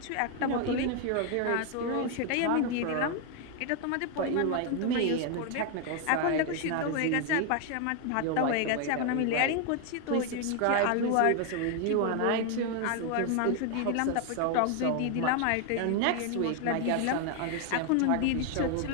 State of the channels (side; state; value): both; different; correlation 0.01